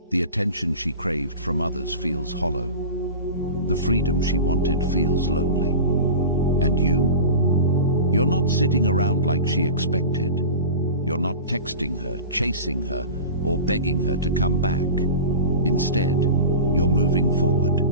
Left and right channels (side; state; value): both; inverted; correlation -0.32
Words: The attention she craved from others feels hollow. The freedom she wanted feels lonely. And you're not sitting around like she expected. You're not texting her, chasing her, or begging her to come back. Instead, you're moving forward,